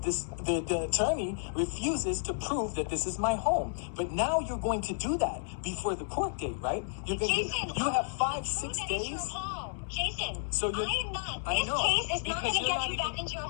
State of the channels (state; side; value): silent; right; digital silence